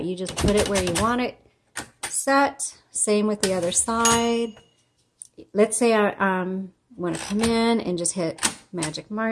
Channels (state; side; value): identical; both; correlation 1.00